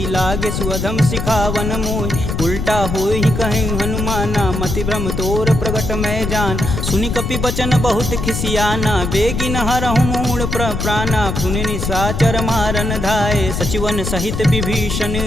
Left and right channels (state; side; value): noise; left; rumble, 3 dB below the sound